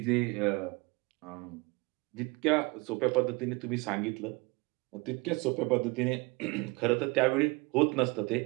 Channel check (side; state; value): left; quieter; 26.5 dB